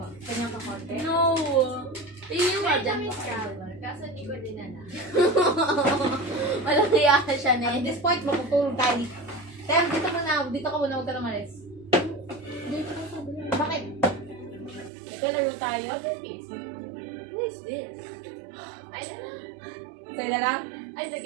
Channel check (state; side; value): drops out; left; at 14.9 s